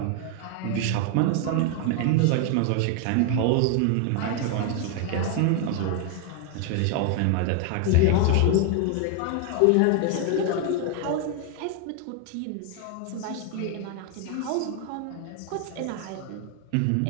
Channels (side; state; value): both; different; correlation 0.01